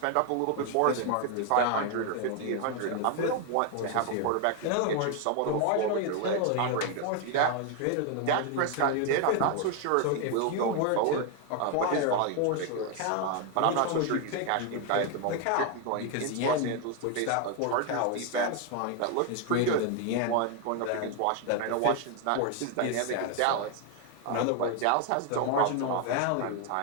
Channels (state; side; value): different; both; correlation 0.01